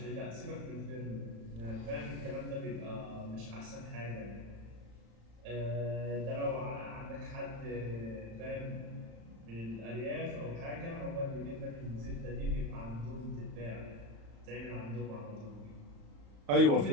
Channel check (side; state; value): left; late; 35 ms